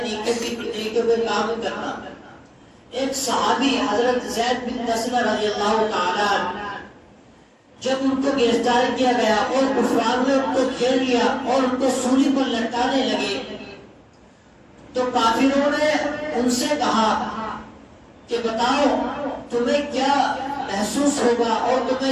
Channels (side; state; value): both; identical; correlation 1.00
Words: نیکیوں پہ کام کرنا۔ ایک صحابی حضرت زید بن دسنہ رضی اللہ تعالیٰ عنہ، جب ان کو گرفتار کیا گیا اور کفار نے ان کو گھیر لیا اور ان کو سولی پر لٹکانے لگے تو کافروں نے ان سے کہا کہ بتاؤ تمہیں کیا محسوس ہوگا اور تمہیں